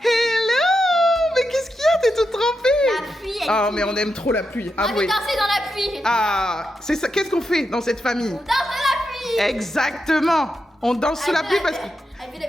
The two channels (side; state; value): both; normal; correlation 0.86